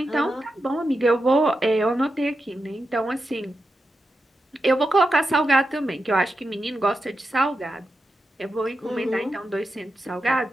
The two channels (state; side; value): normal; both; correlation 0.89